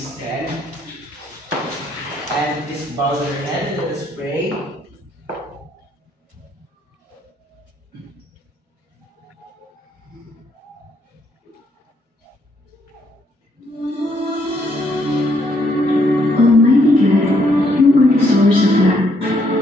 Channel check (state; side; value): normal; both; correlation 0.71